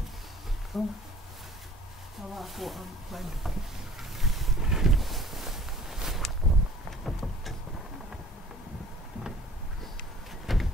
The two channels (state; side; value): normal; both; correlation 0.49